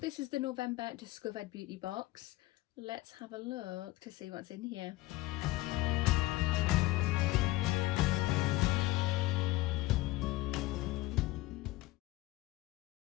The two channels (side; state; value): right; quieter; 18.5 dB